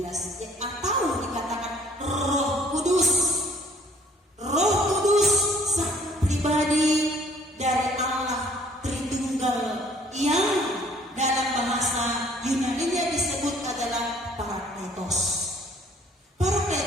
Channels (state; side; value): normal; both; correlation 0.58